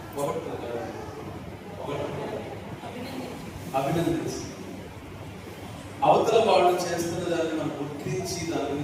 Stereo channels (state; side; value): identical; both; correlation 1.00